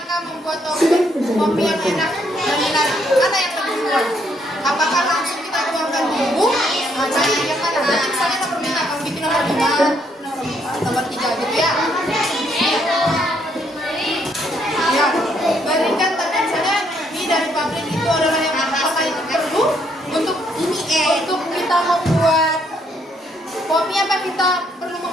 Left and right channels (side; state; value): both; normal; correlation 0.71